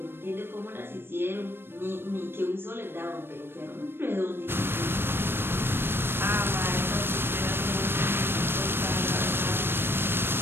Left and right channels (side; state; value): left; late; 0.11 ms